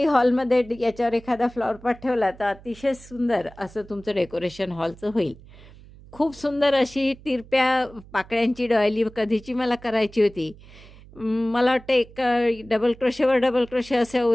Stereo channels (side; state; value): right; noise; hum, 21 dB below the sound